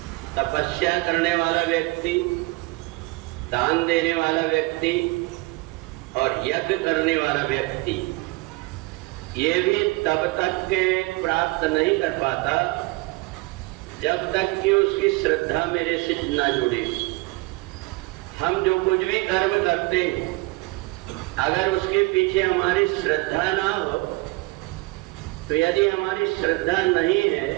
तपस्या करने वाला व्यक्ति, दान देने वाला व्यक्ति और यज्ञ करने वाला व्यक्ति ये भी तब तक के प्राप्त नहीं कर पाता जब तक कि उसकी श्रद्धा मेरे से ना जुड़े। हम जो कुछ भी कर्म करते हैं, अगर उसके पीछे हमारी श्रद्धा ना हो, तो यदि हमारी श्रद्धा नहीं है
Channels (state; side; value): quieter; left; 23.5 dB